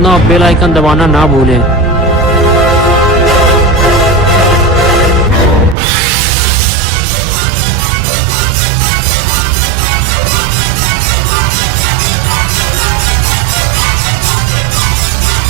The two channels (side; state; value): left; drops out; at 5.8 s